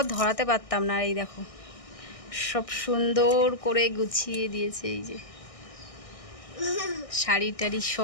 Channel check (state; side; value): late; right; 1.6 ms